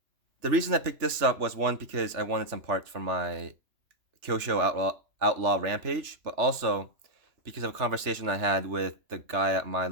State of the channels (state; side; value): late; left; 3.4 ms